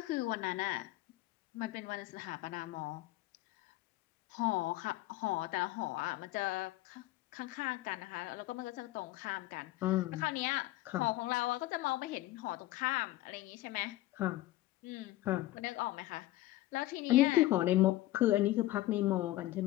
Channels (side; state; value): right; quieter; 16.6 dB